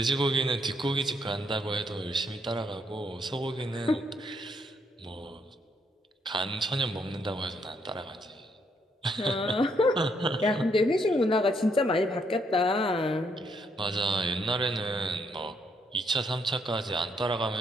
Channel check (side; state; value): both; normal; correlation 0.73